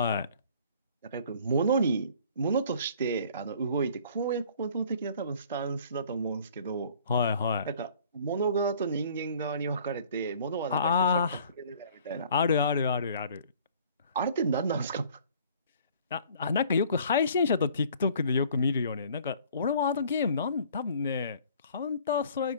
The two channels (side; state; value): both; inverted; correlation -0.53